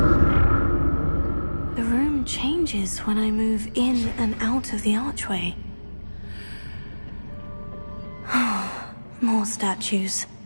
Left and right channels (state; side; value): inverted; both; correlation -1.00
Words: Changes when I move in and out of the archway. More statues.